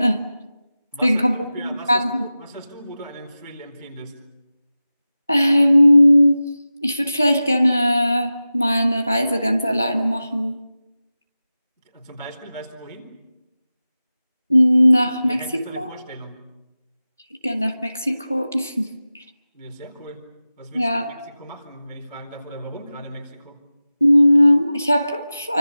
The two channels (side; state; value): both; inverted; correlation -0.96